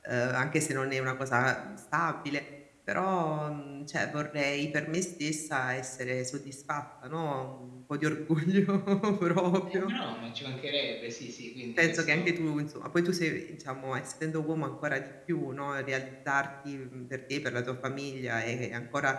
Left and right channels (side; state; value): both; identical; correlation 1.00